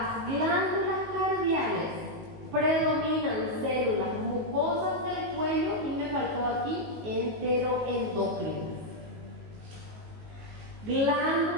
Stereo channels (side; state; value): left; late; 19 ms